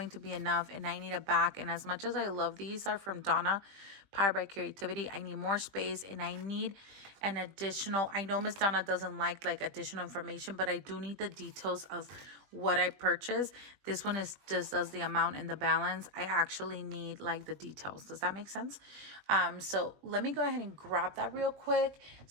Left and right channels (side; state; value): left; late; 21 ms